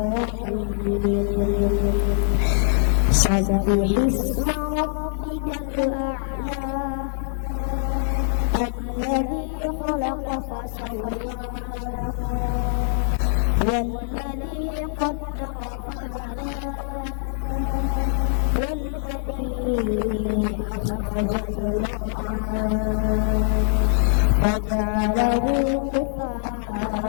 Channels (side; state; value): right; silent; 63 dB below the other